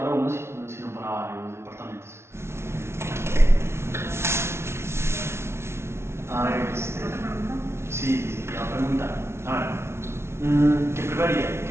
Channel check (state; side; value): late; left; 0.12 ms